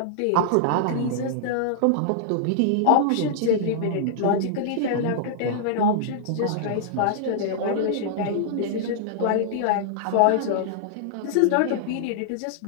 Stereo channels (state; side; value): different; both; correlation -0.01